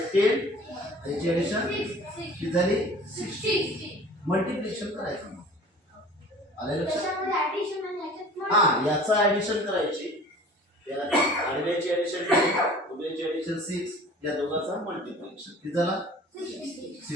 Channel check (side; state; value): both; normal; correlation 0.45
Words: याची ऍडिशन किती झाली 60. मल्टिप्लिकेशन करायचं. आले लक्षात. हा याचा ऍडिशन करायची. आडव्याची ऍडिशन उभ्याची ऍडिशन 6 या दोघांचा मल्टिप्लिकेशन किती झाला